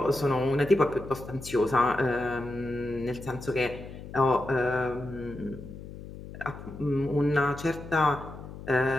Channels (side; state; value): left; noise; hum, 13 dB below the sound